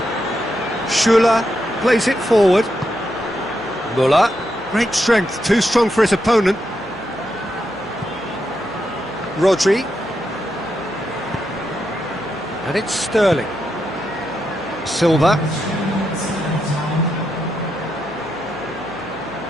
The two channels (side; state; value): left; noise; hum, 25 dB below the sound